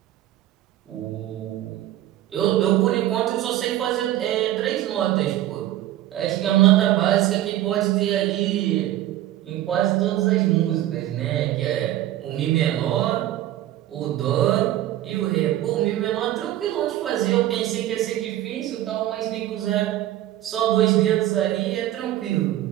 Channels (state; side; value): quieter; left; 13.8 dB